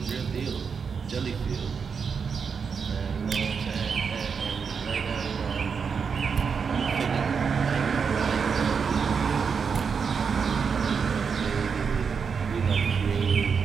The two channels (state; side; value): quieter; left; 6.0 dB